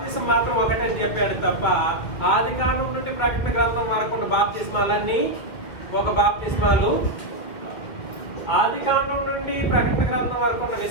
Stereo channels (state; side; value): late; right; 2.2 ms